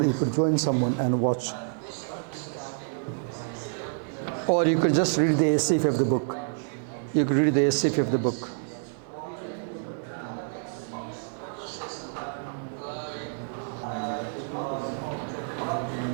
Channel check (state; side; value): silent; left; digital silence